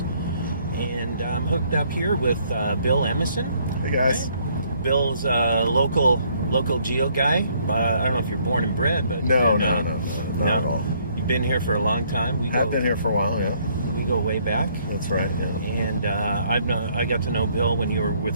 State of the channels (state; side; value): inverted; both; correlation -0.66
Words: and I'm hooked up here with Bill Emison. Hey guys. Right? Bill's a local geo guy. I don't know if you're born and bred, but no, not at all. You've been here for a long time. I've been here for a while, yeah. We go way back. That's right. Yeah. And I got to know Bill when you were